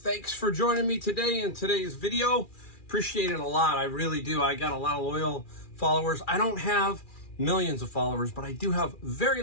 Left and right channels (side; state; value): right; late; 2.4 ms